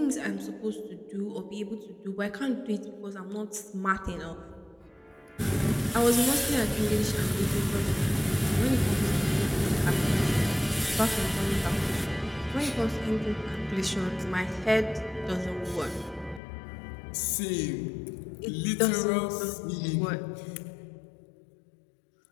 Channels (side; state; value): right; drops out; at 16.4 s